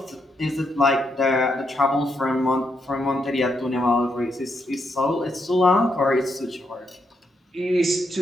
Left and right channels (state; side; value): normal; both; correlation 0.79